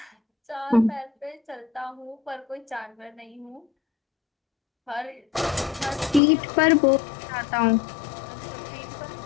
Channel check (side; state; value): right; drops out; at 6.2 s